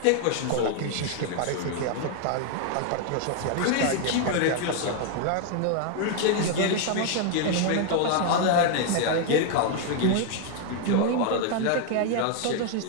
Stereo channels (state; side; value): different; both; correlation 0.00